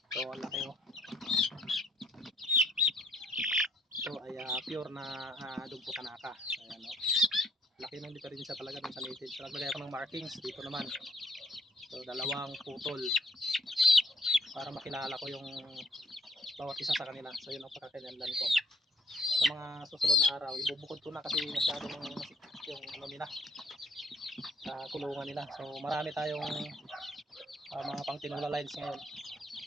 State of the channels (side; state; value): both; normal; correlation 0.65